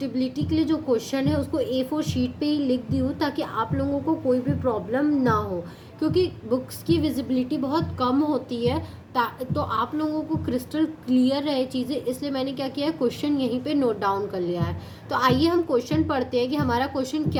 के लिए जो क्वेश्चन है उसको A4 शीट पे ही लिख दी हूँ, ताकि आप लोगों को कोई भी प्रॉब्लम ना हो, क्योंकि बुक्स की विजिबिलिटी बहुत कम होती है। तो आप लोगों को क्रिस्टल क्लियर रहे चीज़ें, इसलिए मैंने क्या किया है, क्वेश्चन यहीं पे नोट डाउन कर लिया है। तो आइए हम क्वेश्चन पढ़ते हैं कि हमारा क्वेश्चन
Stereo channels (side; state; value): both; identical; correlation 1.00